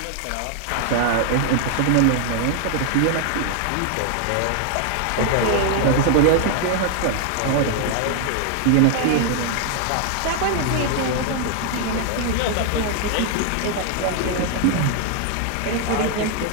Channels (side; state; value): both; different; correlation 0.00